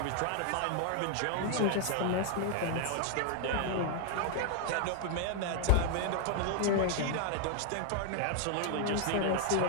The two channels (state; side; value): different; both; correlation 0.00